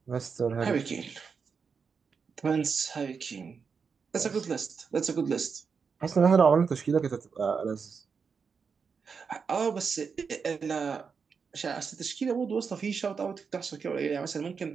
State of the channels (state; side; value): quieter; left; 5.7 dB